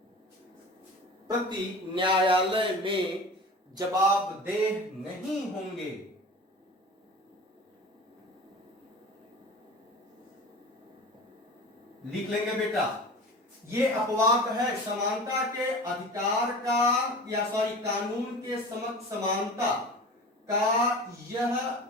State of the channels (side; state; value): both; normal; correlation 0.36